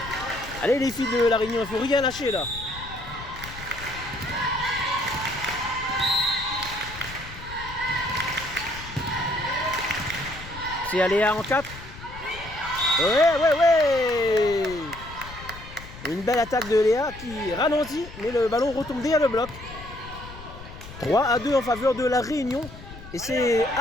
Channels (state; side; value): noise; left; rumble, 15 dB below the sound